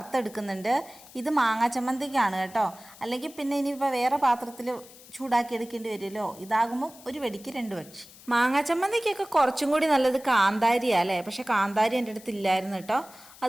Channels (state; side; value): noise; left; hiss, 21 dB below the sound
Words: ഇത് മാങ്ങാ ചമ്മന്തിക്കാണ് കേട്ടോ. അല്ലെങ്കിൽ പിന്നെ ഇനിയിപ്പോൾ വേറെ പാത്രത്തിൽ ചൂടാക്കി എടുക്കേണ്ടി വരുമല്ലോ. ഇതാകുമ്പം ഒരു വെടിക്ക് 2 പക്ഷി. മാങ്ങാ ചമ്മന്തിക്കൊക്കെ കുറച്ചും കൂടി നല്ലത് കാന്താരിയാണ് അല്ലേ. പക്ഷേ കാന്താരി എൻ്റെ അടുത്ത് ഇല്ലായിരുന്നു കേട്ടോ.